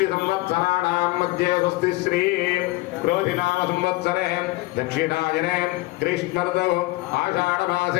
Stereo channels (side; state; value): right; quieter; 20.7 dB